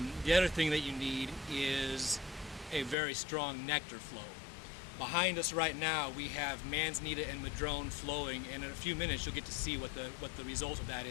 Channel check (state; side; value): drops out; right; at 3.0 s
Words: The other thing that you need is a very strong nectar flow. Behind us right now we have manzanita and madrone flowing, and in a few minutes you'll get to see what the result of that